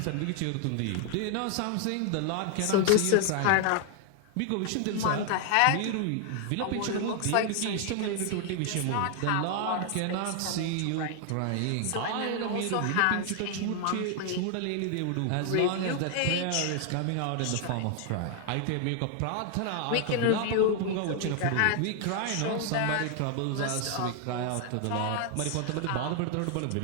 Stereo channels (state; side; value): different; both; correlation 0.00